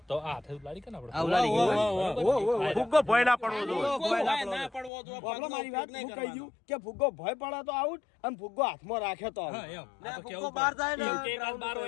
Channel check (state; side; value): drops out; right; at 4.9 s